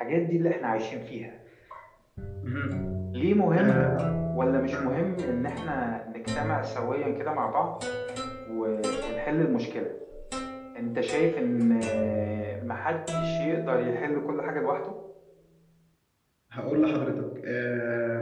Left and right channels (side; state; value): both; identical; correlation 1.00